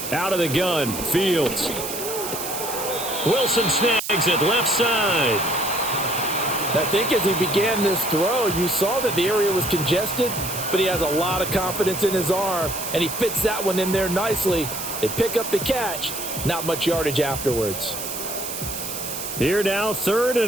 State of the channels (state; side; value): noise; right; hiss, 6 dB below the sound